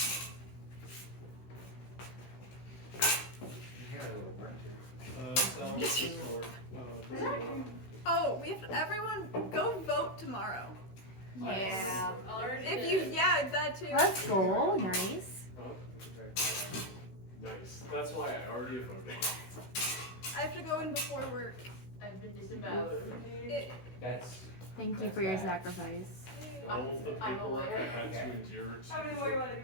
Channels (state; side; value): late; right; 16 ms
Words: You got a little work here. Sal, what's the score? Oh, we have everyone go vote tomorrow. Yeah. If you, yeah, that too. Let's go. Nice. Nice. That's why I already voted. I have to go in before work. I've been disemboweled. That's. Thank you That's for your bad. sacrifice. All the I'm paperwork I aware. had to Okay. endure How many to more you want to